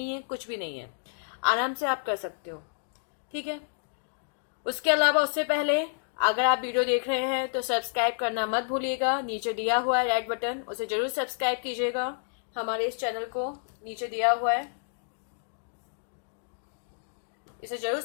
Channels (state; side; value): silent; right; digital silence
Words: है, कुछ भी नहीं है, आराम से आप कर सकते हो। ठीक है। उसके अलावा उससे पहले अगर आप वीडियो देख रहे हैं तो सब्सक्राइब करना मत भूलिएगा। नीचे दिया हुआ है रेड बटन, उसे जरूर सब्सक्राइब कीजिएगा। हमारे इस चैनल को नीचे दिया हुआ है, इसे जरूर